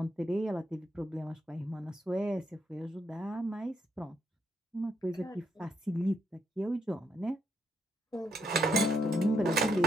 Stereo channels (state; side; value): normal; both; correlation 0.77